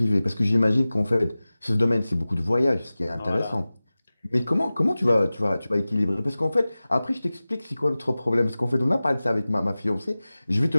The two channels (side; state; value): both; inverted; correlation -0.97